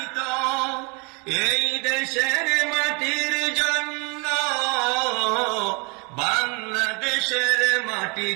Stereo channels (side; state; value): left; quieter; 30.3 dB